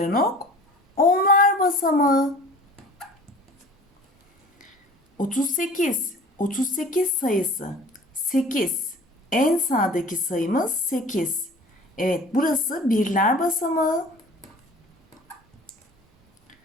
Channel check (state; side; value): normal; both; correlation 0.44